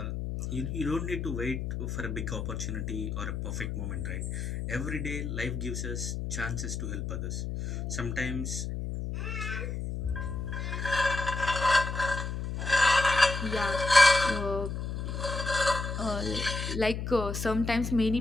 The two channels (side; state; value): left; noise; hum, 4 dB below the sound